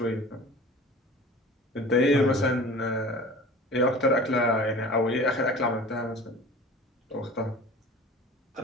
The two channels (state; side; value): normal; both; correlation 0.41